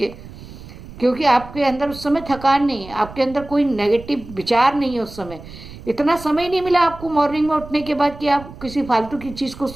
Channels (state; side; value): noise; right; rumble, 16 dB below the sound